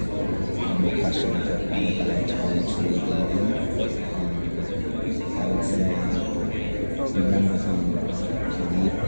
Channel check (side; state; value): both; inverted; correlation -1.00